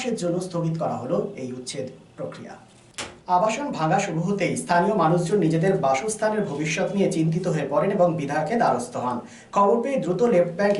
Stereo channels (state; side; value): identical; both; correlation 1.00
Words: জন্য স্থগিত করা হলো এই উচ্ছেদ প্রক্রিয়া। আবাসন ভাঙা শুরু হতেই স্থানীয় মানুষজন নিজেদের বাসস্থানের ভবিষ্যৎ নিয়ে চিন্তিত হয়ে পড়েন এবং বিধায়কের দ্বারস্থ হন। খবর পেয়ে দ্রুত লেফট ব্যাংক